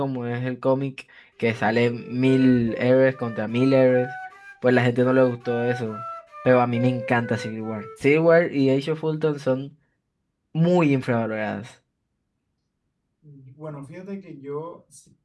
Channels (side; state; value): both; identical; correlation 1.00